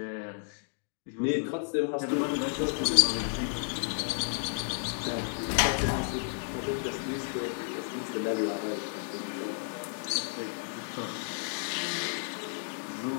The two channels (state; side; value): silent; right; digital silence